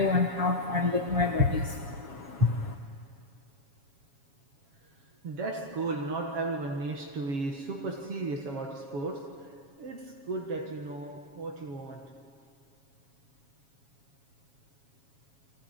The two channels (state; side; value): late; left; 7.2 ms